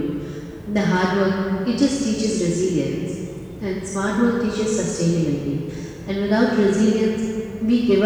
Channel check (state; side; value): identical; both; correlation 1.00